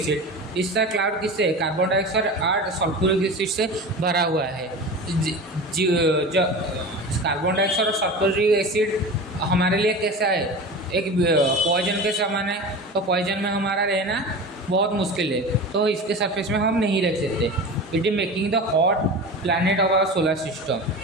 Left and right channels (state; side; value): normal; both; correlation 0.31